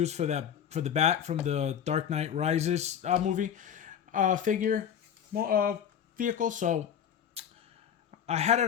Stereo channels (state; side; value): quieter; right; 8.8 dB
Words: for the bat from the Dark Knight Rises movie figure vehicle. So I had